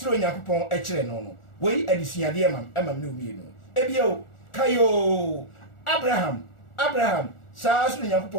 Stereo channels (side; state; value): right; late; 1.4 ms